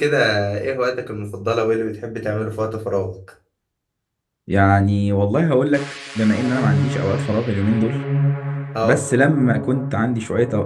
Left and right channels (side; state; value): both; identical; correlation 1.00